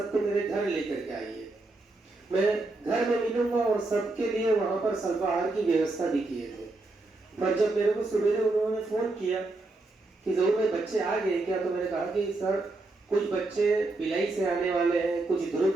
मेरे घर लेकर के आइए, मैं घर में मिलूंगा और सबके लिए वहां पर अल्पाहार की व्यवस्था भी किए थे। पर जब मेरे को सवेरे उन्होंने फोन किया कि जरूर भाई बच्चे आ गए क्या, तो मैंने कहा कि सर कुछ बच्चे भिलाई से आने वाले हैं, कुछ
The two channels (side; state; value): left; quieter; 3.1 dB